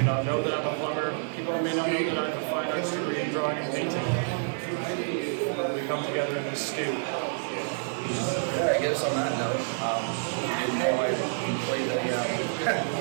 not know that I'm a plumber. People may not know that I have a fine arts degree in drawing and painting. We come together in this stew. Yeah, I guess on that note, you know, I play the,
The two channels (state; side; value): silent; left; 59 dB below the other